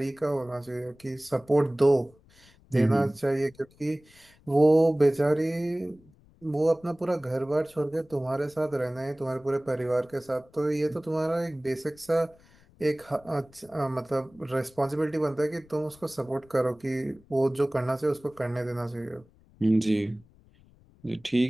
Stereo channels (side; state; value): left; noise; rumble, 28 dB below the sound